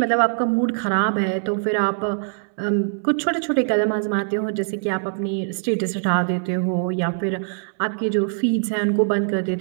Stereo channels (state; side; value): silent; left; digital silence